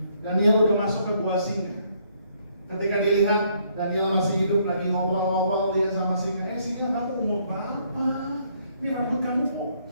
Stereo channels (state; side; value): inverted; both; correlation -0.68